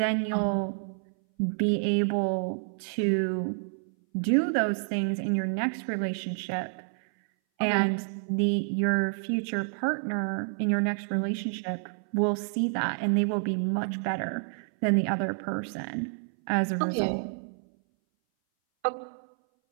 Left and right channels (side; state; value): left; silent; 59 dB below the other